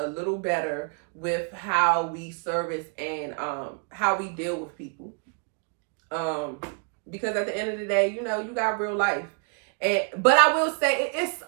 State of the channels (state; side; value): quieter; left; 39.5 dB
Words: little better with how we service and how we deal with people. Because at the end of the day, you got real life. But I will say it's,